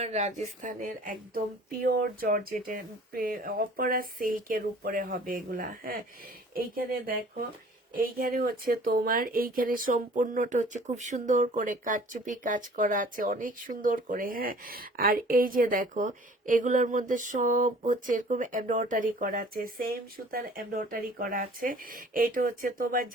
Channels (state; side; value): normal; both; correlation 0.50